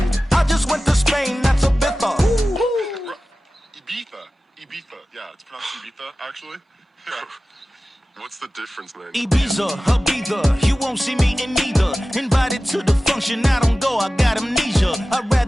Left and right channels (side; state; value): both; normal; correlation 0.95